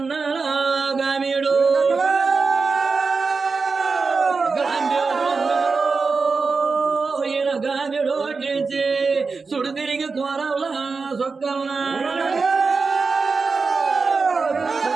గామీడు గాంభ్యోతుడు అన్నారు ఈయన గామీడు ఓటించి సుడు తిరిగి కోరవలా సొక్కవలా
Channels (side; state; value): left; quieter; 4.5 dB